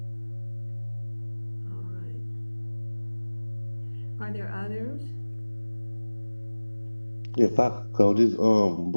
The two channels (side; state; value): both; inverted; correlation -1.00